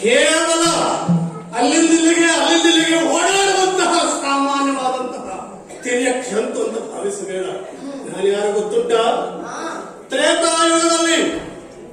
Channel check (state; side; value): identical; both; correlation 1.00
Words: ಕೇವಲ ಅಲ್ಲಿಂದಿಲ್ಲಿಗೆ ಓಡಾಡುವಂತಹ ಸಾಮಾನ್ಯವಾದಂತಹ ತಿರ್ಯಕ್ಷಂತು ಅಂತ ಭಾವಿಸಬೇಡ. ನಾನು ಯಾರು ಗೊತ್ತುಂಟ? ಹಾ ತ್ರೇತಾಯುಗದಲ್ಲಿ